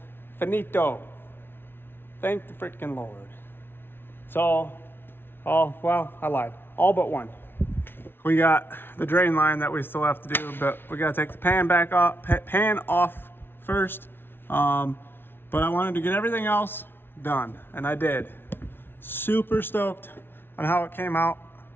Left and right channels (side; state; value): right; late; 0.11 ms